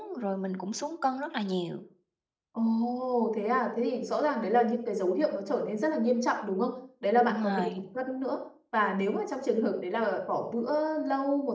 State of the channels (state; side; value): identical; both; correlation 1.00